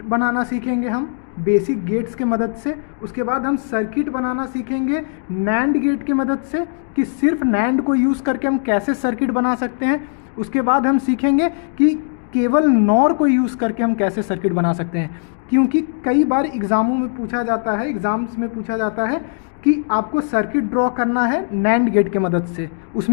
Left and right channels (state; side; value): silent; right; digital silence